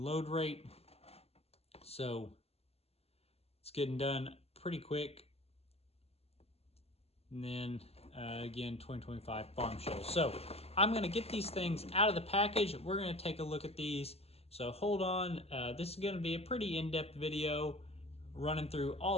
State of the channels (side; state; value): right; late; 0.29 ms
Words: rate. So it's getting done pretty quick. And then again, 2025 Farm Show. So I'm going to get these things out of the package. We're going to take a look at these. So hold on. This is going to be a pretty in-depth video running through